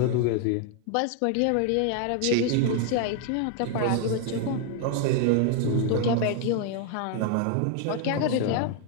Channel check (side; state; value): both; different; correlation 0.00